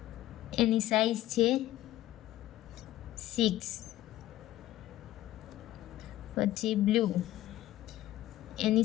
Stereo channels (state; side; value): quieter; right; 14.8 dB